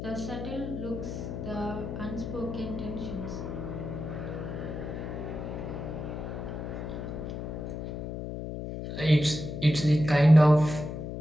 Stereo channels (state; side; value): noise; left; hum, 6 dB below the sound